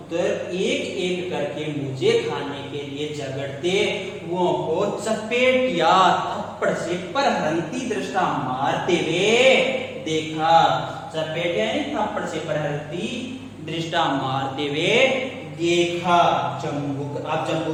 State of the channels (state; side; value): identical; both; correlation 1.00